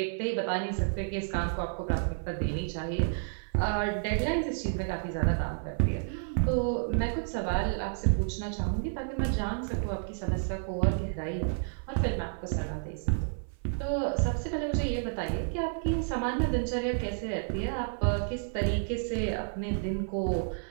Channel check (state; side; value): silent; left; 57 dB below the other